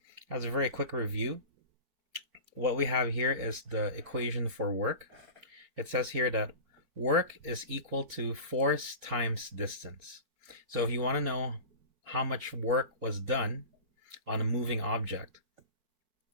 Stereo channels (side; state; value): left; late; 4.4 ms